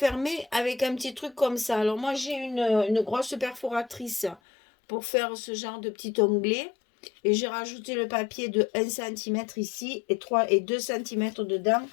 avec un petit truc comme ça. Alors moi, j'ai une grosse perforatrice pour faire ce genre de petit onglet. Et j'ai rajouté le papier de 1 cm ici et 2 cm dedans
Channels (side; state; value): right; drops out; at 4.4 s